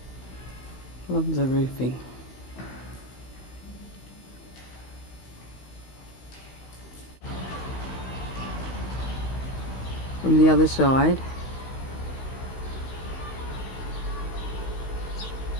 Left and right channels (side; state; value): right; late; 16 ms